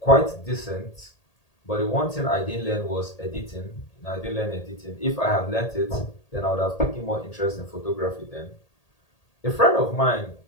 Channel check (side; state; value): right; late; 1.8 ms